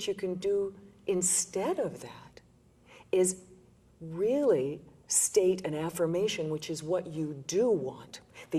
you can do instead of that is really state an affirmation, which is what you do want,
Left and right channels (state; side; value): identical; both; correlation 1.00